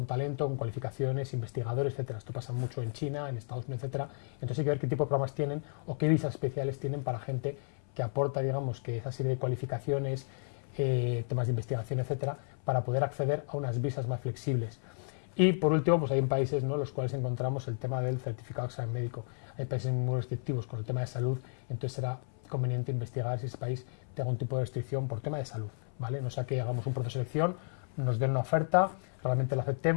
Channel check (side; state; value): right; silent; 56 dB below the other